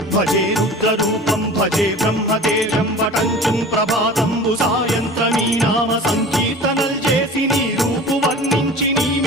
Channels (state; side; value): normal; both; correlation 0.39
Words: భజే రుద్రరూపం భజే బ్రహ్మదేవం వటంచుం ప్రభాతంబు సాయంత్రమీ నామ సంకీర్తనల్ చేసి నీ రూపు వర్ణించి నీ